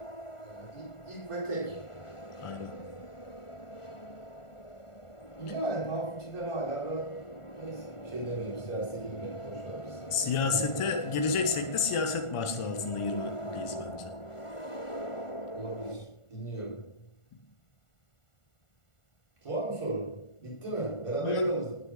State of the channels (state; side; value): late; right; 1.4 ms